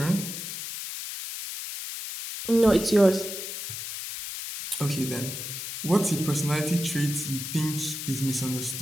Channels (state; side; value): noise; left; hiss, 7 dB below the sound